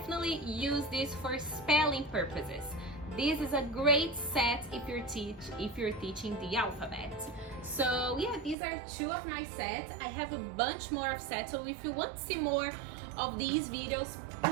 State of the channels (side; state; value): left; drops out; at 8.6 s